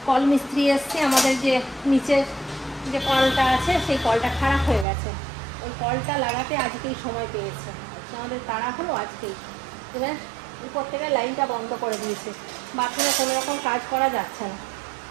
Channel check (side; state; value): left; drops out; at 4.9 s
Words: কল মিস্ত্রি এসছে, আমাদের যে নিচের যে কলটা আছে সেই কলটা খারাপ হয়ে গেছে, ওই কলটা লাগাতে আজকেই সময় পেয়েছে। আমাদের তাড়া হলো আজকেই। এবার উপর থেকে লাইনটা বন্ধ করে দিয়েছে, বাথরুমে কোনো রকম কাজ করা যাচ্ছে না,